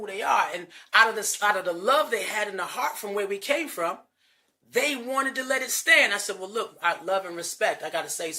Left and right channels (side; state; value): both; identical; correlation 1.00